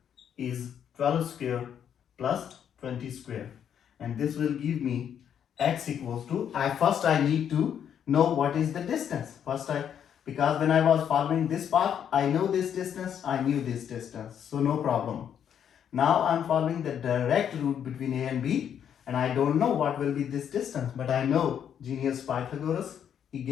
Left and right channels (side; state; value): right; quieter; 8.8 dB